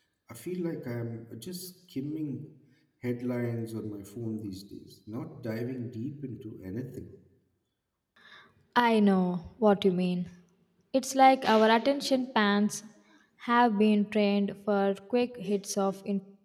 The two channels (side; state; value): both; identical; correlation 1.00